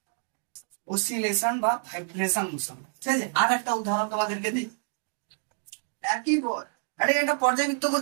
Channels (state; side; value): silent; left; digital silence